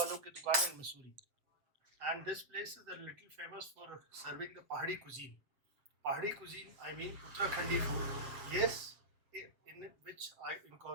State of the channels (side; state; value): left; late; 7.5 ms